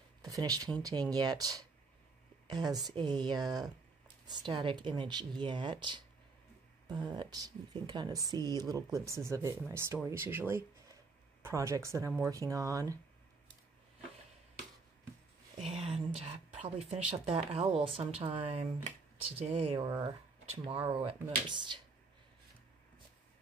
the finished painting yet as a static image yet, but you can kind of see little glimpses of it in my stories usually, projects that I'm working on. And probably finish up that owl sometime today or tomorrow at most.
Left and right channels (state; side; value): quieter; left; 4.1 dB